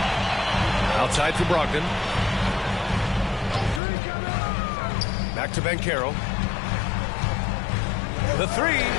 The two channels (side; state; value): right; drops out; at 3.8 s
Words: Outside for Brogdon. Back to Banchero. The three.